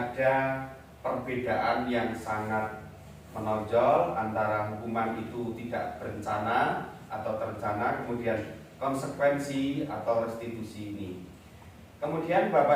perbedaan yang sangat menonjol antara hukuman itu tidak berencana atau terencana, kemudian konsekuensi atau restitusi ini. Kemudian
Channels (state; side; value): identical; both; correlation 1.00